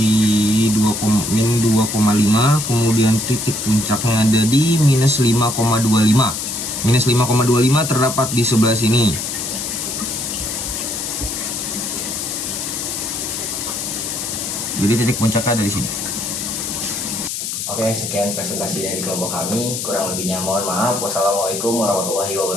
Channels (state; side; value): noise; left; hiss, 4 dB below the sound